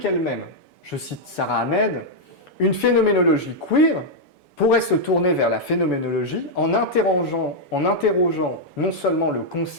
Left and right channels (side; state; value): right; late; 7.0 ms